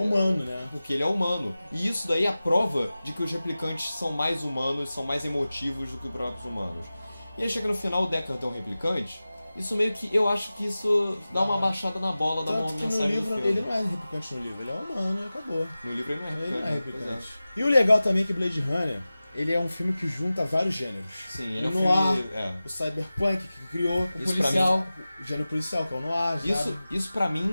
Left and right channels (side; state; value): both; inverted; correlation -0.96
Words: né? Porque ele é humano. E isso daí é a prova de que os replicantes são mais humanos, são mais emotivos do que os próprios humanos. E aí chega no final, o Deckard é um replicante. Isso meio que, eu acho que isso dá uma baixada na bola, dá uma mensagem no livro, do filme. ele não é replicante no livro, ele é humano e acabou. No livro ele não é replicante. E o legal também é que Blade Runner, ele é um filme que junta vários gêneros. Sim, ele é um noir, o cyberpunk que criou, o policial, o gênero policial, que é o noir. Isso pra